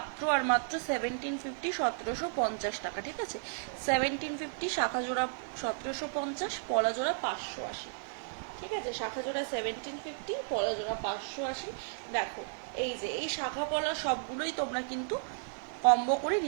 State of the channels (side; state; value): left; silent; digital silence